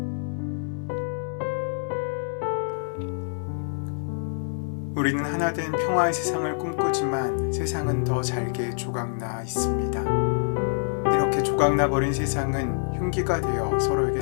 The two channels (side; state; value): right; silent; 61 dB below the other